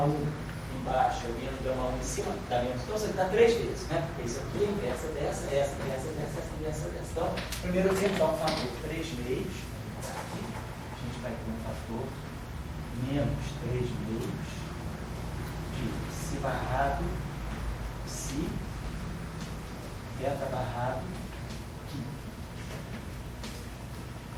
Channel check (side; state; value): both; identical; correlation 1.00